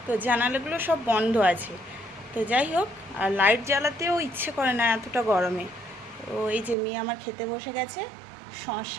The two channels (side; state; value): left; drops out; at 6.8 s